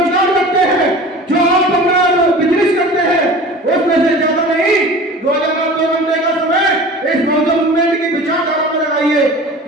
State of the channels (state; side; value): normal; both; correlation 0.39